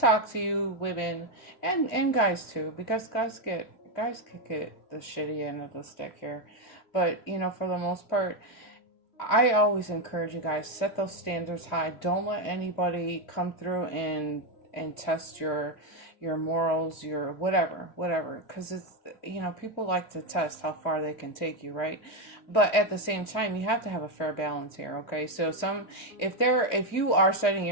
to you women and guys too, because guys can get the shitty end of the stick here, but you know, for the most part, I always encourage you guys, set those standards high. Don't let anybody come through and test your morals, your whatever, because it's, you know, people like to test how far they can take you, right? But at the same time, you have to have a fair balance here, okay? So if you are setting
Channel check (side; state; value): right; late; 2.6 ms